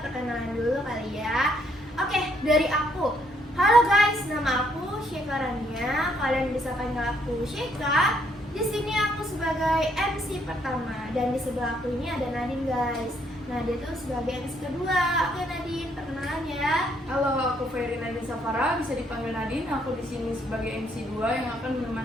dulu kali ya. Oke, dari aku. Halo guys, nama aku Syeka Rania. Kalian bisa panggil aku Syeka. Di sini aku sebagai MC pertama dan di sebelah aku ini ada Nadine guys. Nah, dia tuh sebagai MC kedua. Oke Nadine, perkenalan ya. Halo, aku Ferry Nadine Safara, bisa dipanggil Nadine. Aku di sini sebagai MC 2 yang akan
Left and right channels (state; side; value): normal; both; correlation 0.70